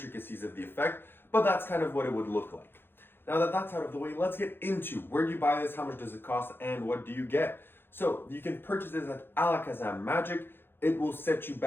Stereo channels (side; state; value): right; late; 0.10 ms